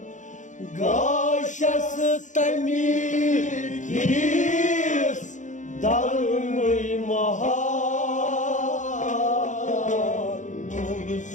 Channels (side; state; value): right; late; 0.36 ms